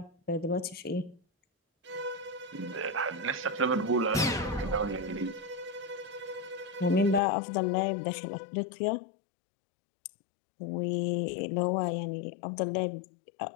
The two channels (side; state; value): right; drops out; at 7.2 s